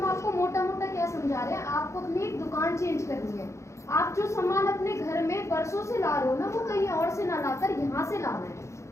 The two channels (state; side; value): late; right; 0.14 ms